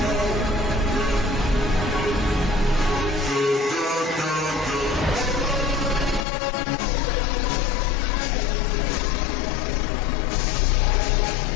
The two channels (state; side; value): drops out; right; at 6.2 s